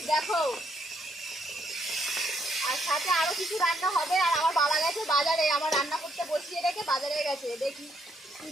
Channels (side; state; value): both; normal; correlation 0.73